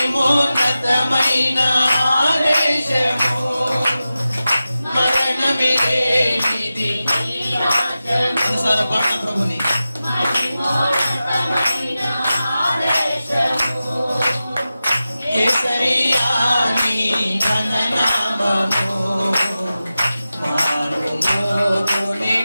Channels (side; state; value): both; inverted; correlation -0.94